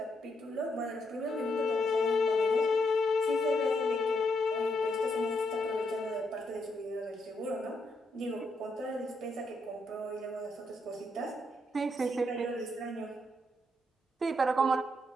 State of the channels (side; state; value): both; normal; correlation 0.78